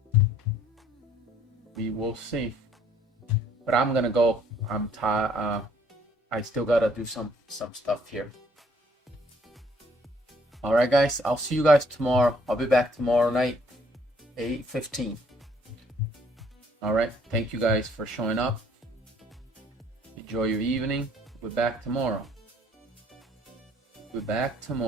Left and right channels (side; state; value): both; normal; correlation 0.63